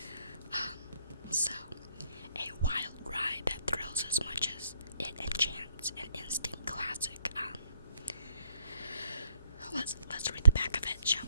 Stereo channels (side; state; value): both; inverted; correlation -0.68